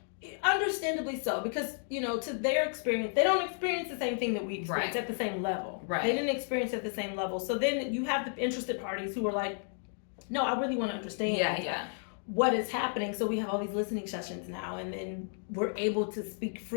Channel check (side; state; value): right; silent; 56 dB below the other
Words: understandably so, because to their experience, they don't experience the same thing that we experience at the same level. They didn't experience it at the same level. So then you have the interested parties who are like, no, I really want to understand what is happening. So we have all these listening sessions now, and then we're able to speak